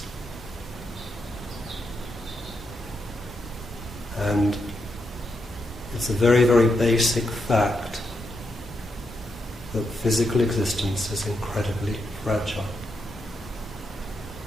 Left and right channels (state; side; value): normal; both; correlation 0.83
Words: And it's a very, very basic fact that physical existence is incredibly fragile.